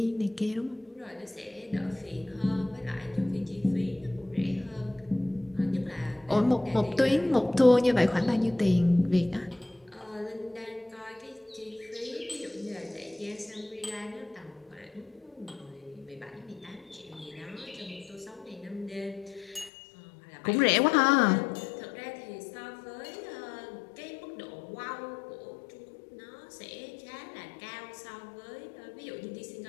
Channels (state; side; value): drops out; right; at 19.7 s